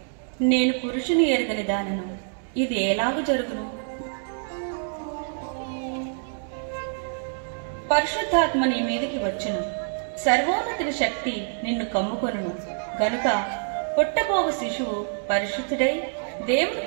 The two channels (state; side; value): silent; left; digital silence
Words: నేను పురుషుని ఎరుగని దానను, ఇది ఎలాగు జరుగును? పరిశుద్ధాత్మ నీ మీదికి వచ్చును, సర్వోన్నతుని శక్తి నిన్ను కమ్ముకొనును. గనుక పుట్టబోవు శిశువు పరిశుద్ధుడై దేవుని